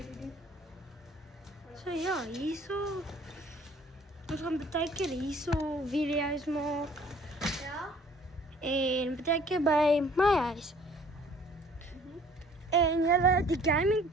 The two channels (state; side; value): normal; both; correlation 0.54